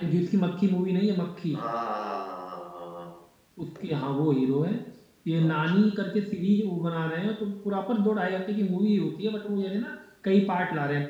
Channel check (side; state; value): both; identical; correlation 1.00